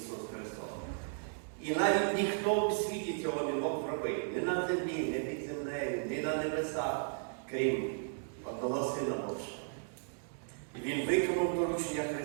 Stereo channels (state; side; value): silent; left; digital silence